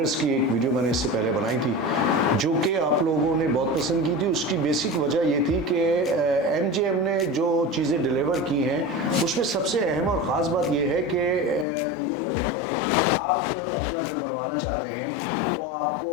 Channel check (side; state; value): right; drops out; at 11.7 s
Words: की एक वीडियो मैंने इससे पहले बनाई थी जो कि आप लोगों ने बहुत पसंद की थी। उसकी बेसिक वजह ये थी कि MJM ने जो चीज़ें डिलीवर की हैं उसमें सबसे अहम और ख़ास बात यह है कि आप अपना घर बनवाना चाहते हैं तो आपको